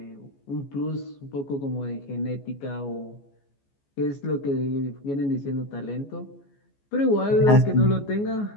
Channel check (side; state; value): right; late; 14 ms